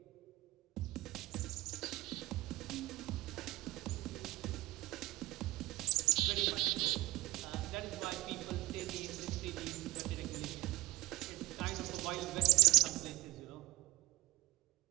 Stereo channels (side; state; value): left; quieter; 19.0 dB